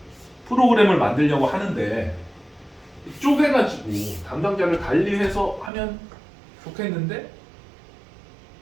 프로그램을 만들려고 하는데 쪼개가지고 담당자를 관리해서 하면 좋겠는데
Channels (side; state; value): left; drops out; at 5.7 s